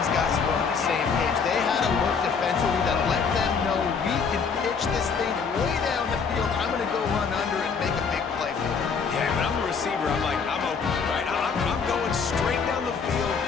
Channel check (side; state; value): right; quieter; 5.7 dB